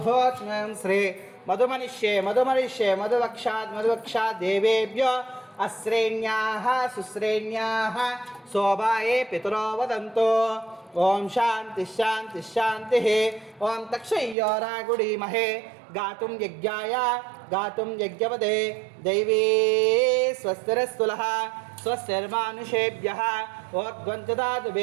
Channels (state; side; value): drops out; left; at 14.4 s